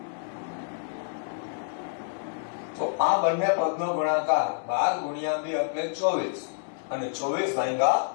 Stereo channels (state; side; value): silent; right; digital silence